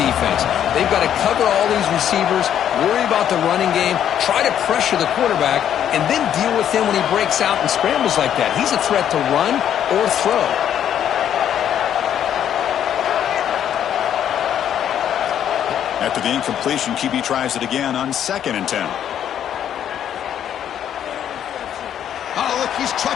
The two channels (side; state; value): right; quieter; 9.9 dB